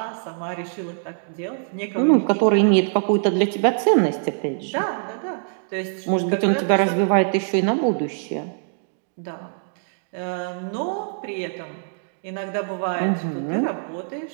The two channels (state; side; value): silent; left; digital silence